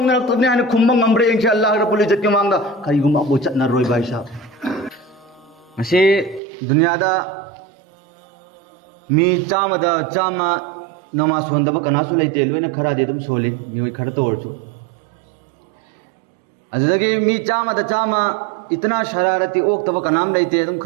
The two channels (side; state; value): left; drops out; at 6.4 s